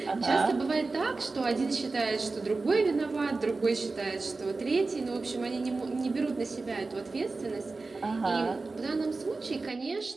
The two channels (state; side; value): quieter; left; 3.7 dB